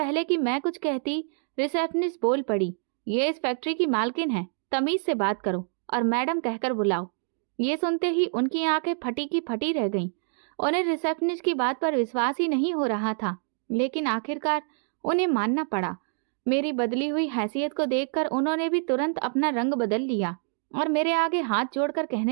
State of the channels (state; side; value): silent; left; 60 dB below the other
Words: कि मैं कुछ कहती, रिसेप्शनिस्ट बोल पड़ी, ये इस फैक्ट्री की मालकिन है, तमीज से बात करो और मैडम कहकर बुलाओ। ये सुनते ही उनकी आंखें फटी की फटी रह गईं। उन्हें रिसेप्शनिस्ट की बात पर विश्वास ही नहीं हो रहा था, लेकिन आखिरकार उन्हें मानना पड़ा। मेरी बदली हुई हैसियत को देखकर उन्होंने भी तुरंत अपना रंग बदल लिया और मेरे आगे हाथ जोड़कर